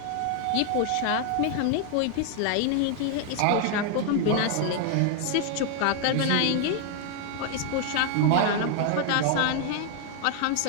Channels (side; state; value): both; different; correlation 0.00